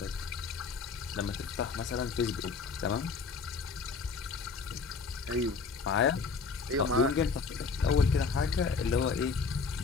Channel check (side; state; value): right; quieter; 4.9 dB